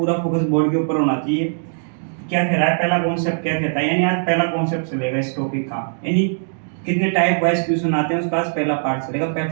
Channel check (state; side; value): silent; left; digital silence